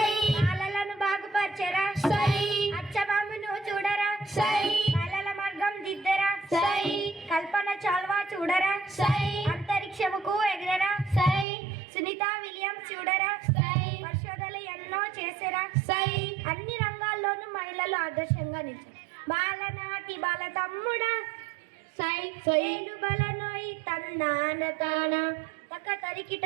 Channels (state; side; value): drops out; left; at 11.5 s